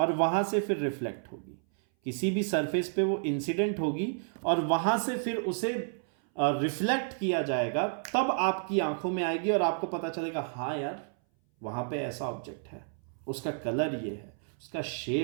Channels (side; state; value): left; silent; 57 dB below the other